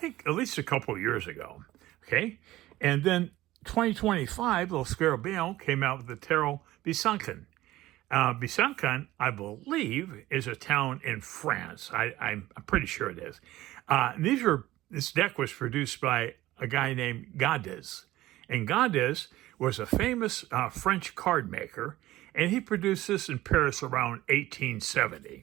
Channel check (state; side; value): quieter; left; 16.3 dB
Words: at least a couple years ago. Okay, and then 2025, Lo Scarabeo came out with the Tarot Besancon. Besancon, I believe, is a town in France. I'm pretty sure it is. This deck was produced by a guy named Gaudais. And Gaudais was a famous French card maker, and he produced this in Paris around